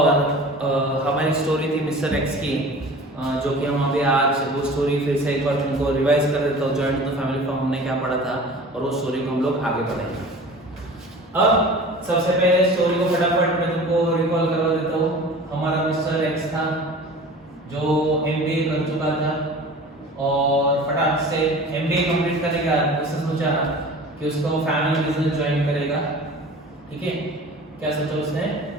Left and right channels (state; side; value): normal; both; correlation 0.41